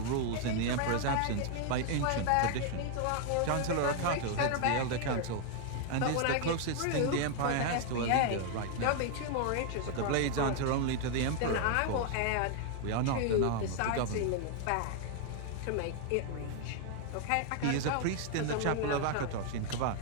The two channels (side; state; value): both; different; correlation 0.00